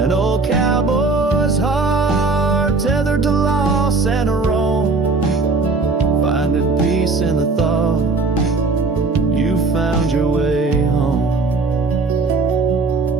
old cowboy's heart tethered to loss and a wrong, finding peace in the thought you found your way home.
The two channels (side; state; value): left; quieter; 3.8 dB